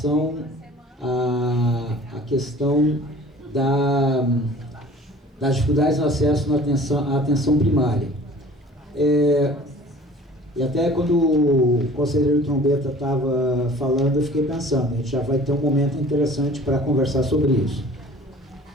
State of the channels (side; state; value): both; normal; correlation 0.47